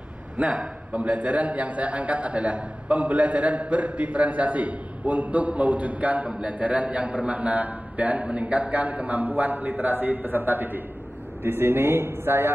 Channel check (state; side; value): normal; both; correlation 0.97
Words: Nah, pembelajaran yang saya angkat adalah pembelajaran berdiferensiasi untuk mewujudkan pembelajaran yang bermakna dan meningkatkan kemampuan literasi peserta didik. Di sini